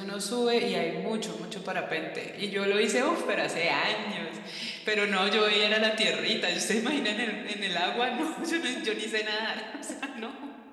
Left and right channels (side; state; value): both; identical; correlation 1.00